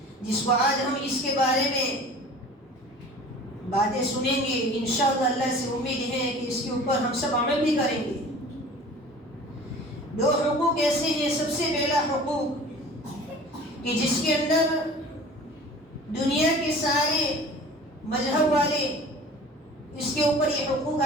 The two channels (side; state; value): both; normal; correlation 0.42